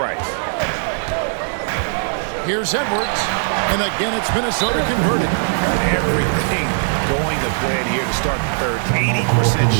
Here's Edwards. And again, it's Minnesota converted. Everything going to plan here to start the third. 80%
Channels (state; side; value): silent; left; digital silence